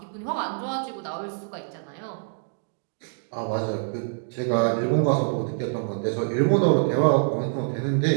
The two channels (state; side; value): silent; left; digital silence